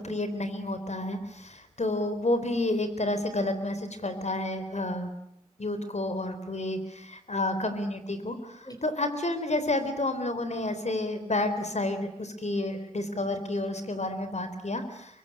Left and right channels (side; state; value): both; normal; correlation 0.51